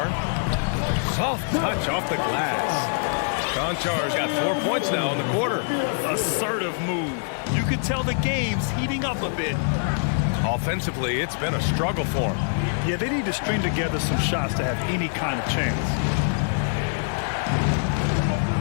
Soft touch off the glass. Conchar's got 4 points now in the quarter. Assertive move. You could tell the game's heating up a bit. Offensively, it's been a struggle for him. Yeah, they need to string together some shots to have any kind of chance.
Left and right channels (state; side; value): silent; right; digital silence